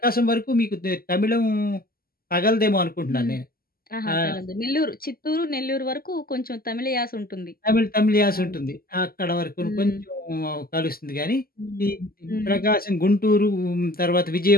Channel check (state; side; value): late; right; 0.43 ms